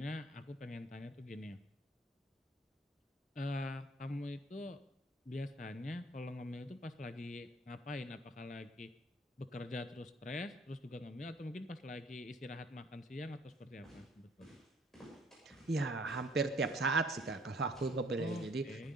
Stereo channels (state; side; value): normal; both; correlation 0.59